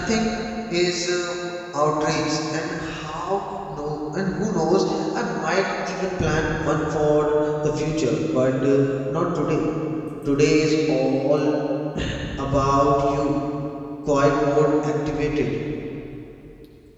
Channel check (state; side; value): identical; both; correlation 1.00